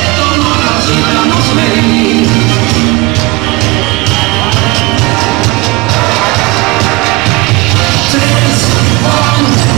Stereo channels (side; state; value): left; quieter; 23.3 dB